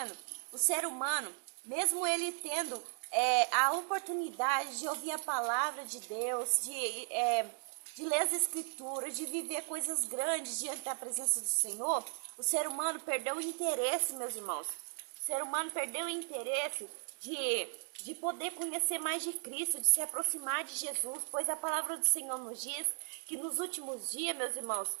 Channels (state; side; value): silent; left; 54 dB below the other